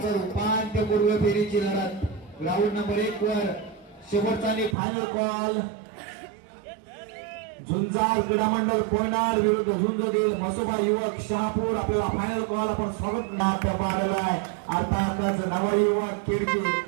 उपांत्यपूर्व फेरीची लढत. ग्राउंड नंबर 1 वर शेवटचा आणि फायनल कॉल. झुंजार क्रीडा मंडळ कोणार विरुद्ध झुंजदेव मसोबा युवक शहापूर. आपल्याला फायनल कॉल आपण स्वागत पाडलाय. अर्थातच नवयुवक खिडकी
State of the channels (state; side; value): drops out; left; at 4.8 s